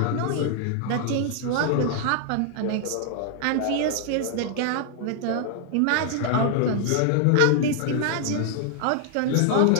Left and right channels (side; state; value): both; different; correlation 0.00